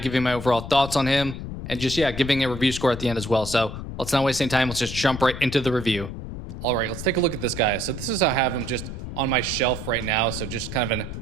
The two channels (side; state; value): left; noise; rumble, 8 dB below the sound